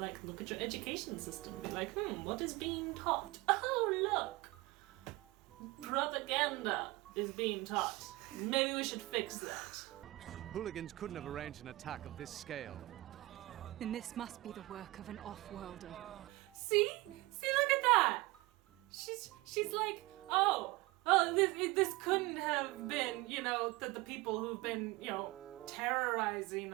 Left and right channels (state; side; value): quieter; left; 21.2 dB